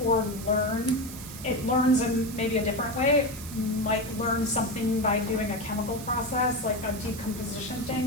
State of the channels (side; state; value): right; noise; hiss, 13 dB below the sound